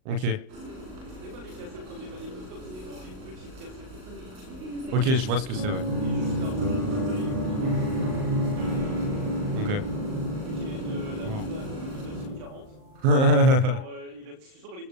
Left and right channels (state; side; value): late; left; 38 ms